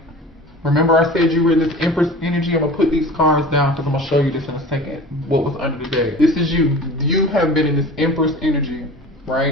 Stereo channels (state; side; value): normal; both; correlation 0.38